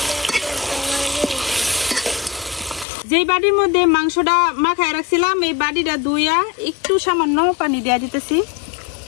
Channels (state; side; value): drops out; right; at 2.9 s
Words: যেই বাটির মধ্যে মাংসটা মাখায় রাখছিলাম এই বাটিটা ধুইয়া একটু সামান্য পানি দিয়ে দিতেছি।